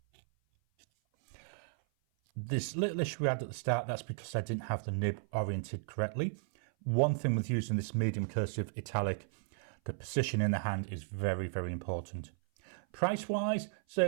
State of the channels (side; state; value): left; silent; 55 dB below the other